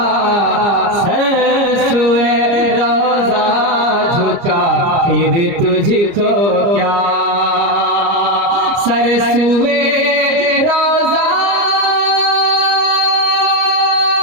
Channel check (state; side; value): late; left; 29 ms